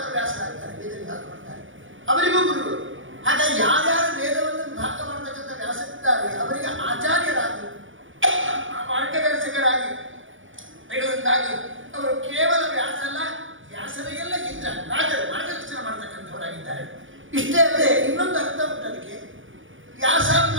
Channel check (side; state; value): left; late; 0.57 ms